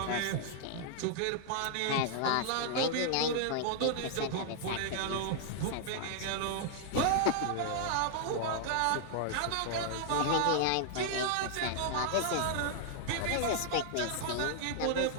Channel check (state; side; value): different; both; correlation -0.01